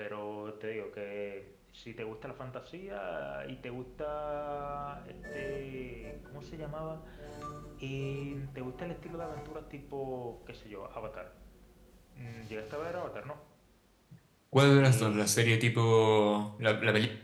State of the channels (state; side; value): identical; both; correlation 1.00